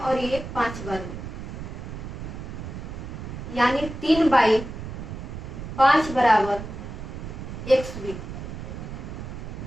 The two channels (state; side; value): noise; right; rumble, 8 dB below the sound